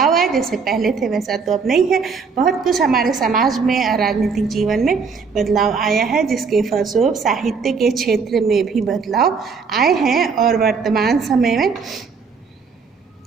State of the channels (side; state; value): left; quieter; 5.3 dB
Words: आए। जैसे पहले थे वैसा तो अब नहीं है। बहुत कुछ हमारे समाज में और राजनीतिक जीवन में बदलाव आया है, जिसके फलस्वरूप साहित्य के क्षेत्र में भी बदलाव आए हैं। और वर्तमान समय में